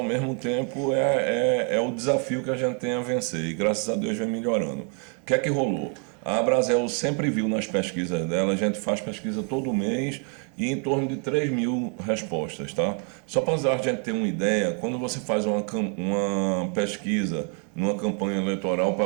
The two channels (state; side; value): quieter; left; 36.6 dB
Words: mesmo tempo é o desafio que a gente tem a vencer e graças a Deus vem melhorando. O que é que rolou? A Abrazel sempre viu nas pesquisas dela, a gente faz pesquisa todo mês e em torno de 3 mil respostas, tá? Só para a gente ter uma ideia, quando você faz uma pesquisa numa campanha eleitoral